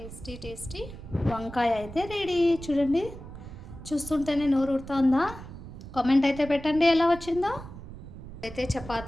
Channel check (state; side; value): noise; right; rumble, 13 dB below the sound